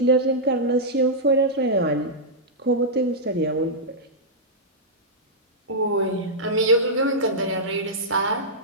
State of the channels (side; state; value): both; normal; correlation -0.09